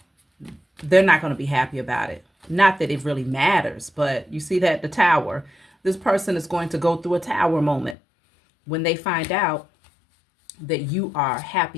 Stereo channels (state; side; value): drops out; right; at 8.0 s